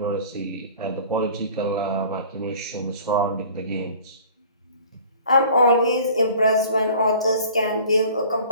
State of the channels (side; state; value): both; inverted; correlation -0.48